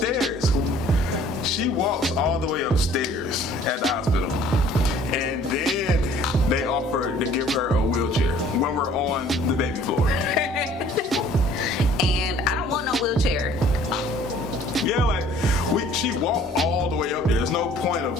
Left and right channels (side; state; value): both; normal; correlation 0.54